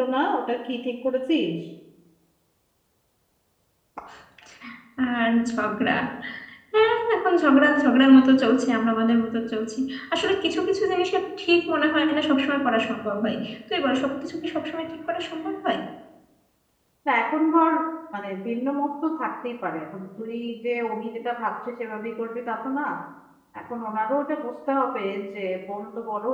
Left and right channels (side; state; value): both; identical; correlation 1.00